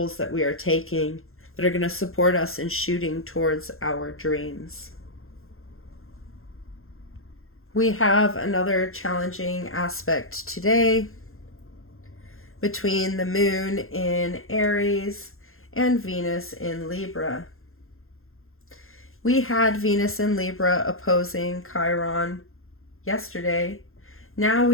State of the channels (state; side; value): late; right; 0.61 ms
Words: that we are taking, that are going to support us in shooting towards our dreams. We have another challenging aspect today between the moon in Aries and Venus in Libra. We had Venus in Libra opposing Chiron yesterday. Now